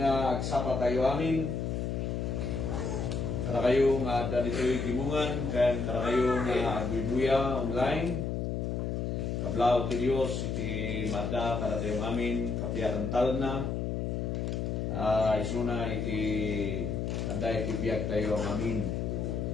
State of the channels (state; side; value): noise; left; hum, 1 dB below the sound